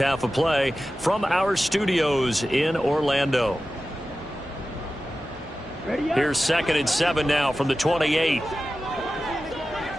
of play from our studios in Orlando. Here's 2nd and 7 now from the 28.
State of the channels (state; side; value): normal; both; correlation 0.94